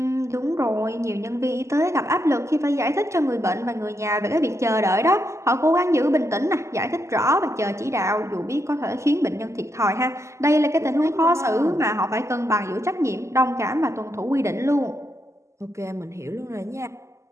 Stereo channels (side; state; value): left; late; 0.14 ms